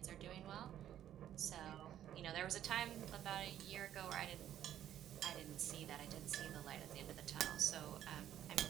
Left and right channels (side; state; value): left; quieter; 11.1 dB